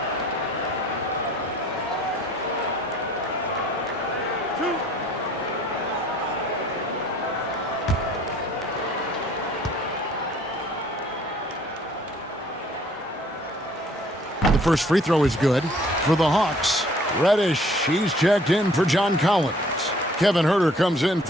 The first free throw is good for the Hawks. Reddish, he's checked in for John Collins. Kevin Huerter comes in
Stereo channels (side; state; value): both; normal; correlation 0.57